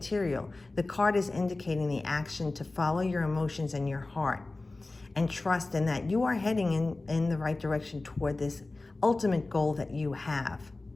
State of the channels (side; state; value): right; quieter; 3.2 dB